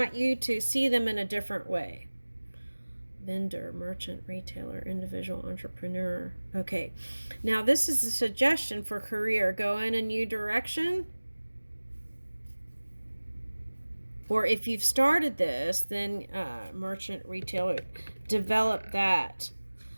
you to see them in a different way. Vendor, merchant, retailer, individual, entrepreneur. Okay, now this is a suggestion for career. Go in a new direction. Or if you've started this, then merchant, retailer, develop that.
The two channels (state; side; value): inverted; both; correlation -1.00